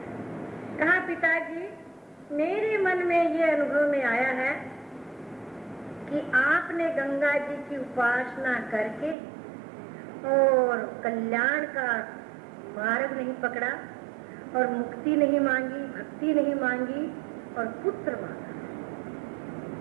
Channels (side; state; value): left; drops out; at 9.2 s